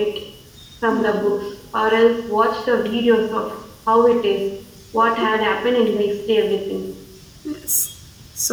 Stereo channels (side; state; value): both; identical; correlation 1.00